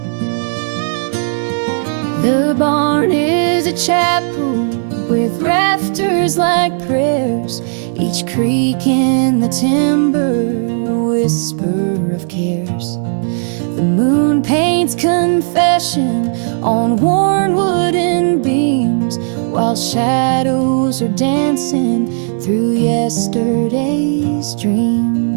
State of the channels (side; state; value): left; silent; digital silence